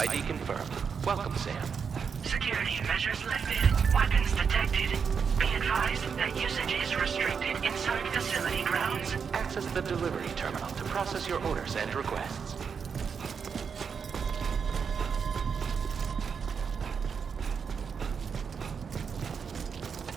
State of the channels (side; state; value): left; quieter; 6.3 dB